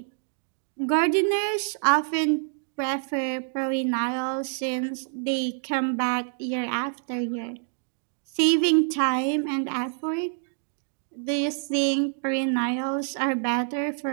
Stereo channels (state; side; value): silent; left; digital silence